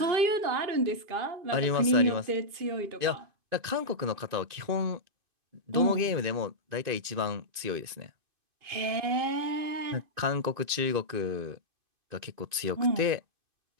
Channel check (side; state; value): left; late; 2.5 ms